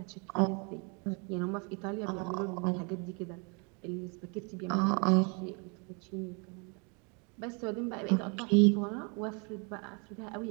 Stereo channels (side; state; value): left; quieter; 34.3 dB